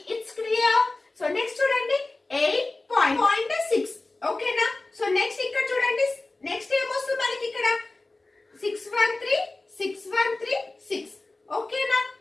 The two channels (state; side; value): quieter; right; 3.1 dB